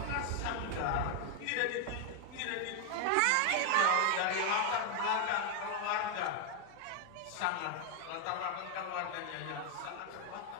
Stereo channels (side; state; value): both; different; correlation 0.00